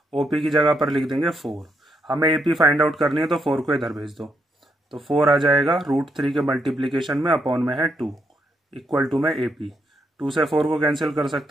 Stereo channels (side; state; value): both; normal; correlation 0.78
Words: ओपी की जगह पर लिख देंगे 4। हमें एपी फाइंड आउट करनी है तो 4 को इधर भेज दो, तो 4 आ जाएगा √3 के मल्टीप्लीकेशन में अपॉन में है 2 इक्वल टू में एपी। 2 से 4 को कैंसिल कर